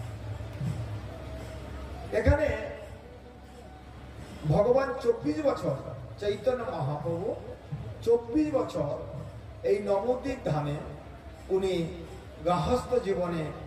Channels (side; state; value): both; identical; correlation 1.00